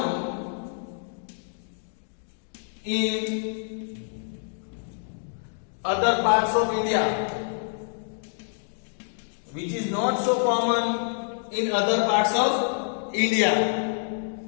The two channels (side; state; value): right; silent; digital silence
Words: in other parts of India. Which is not so common in other parts of India.